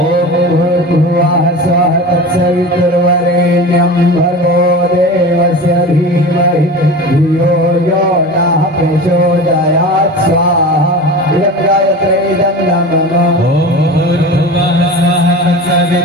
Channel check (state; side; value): normal; both; correlation 0.32